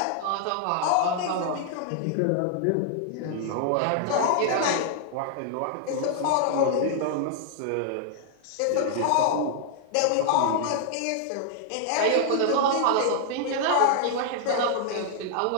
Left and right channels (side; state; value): both; different; correlation -0.01